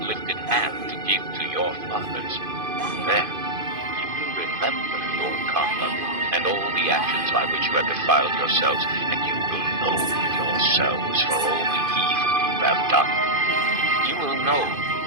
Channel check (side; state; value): left; late; 2.5 ms